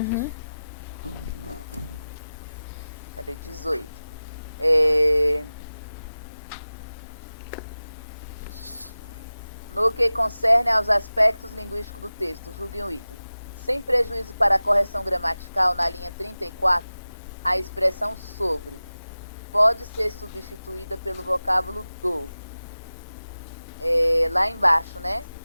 Cadê? 18. No que concerne aos aspectos linguísticos do texto, julgue um item. Sem prejuízo para a correção gramatical, na linha 34, a expressão sobre pode ser substituída pelo vocábulo do. Lá embaixo, né?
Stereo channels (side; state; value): both; inverted; correlation -0.96